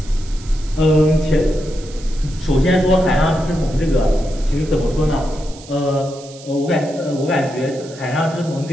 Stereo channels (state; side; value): noise; right; hiss, 19 dB below the sound